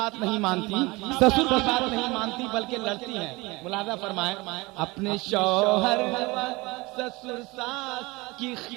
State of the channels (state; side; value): quieter; left; 23.5 dB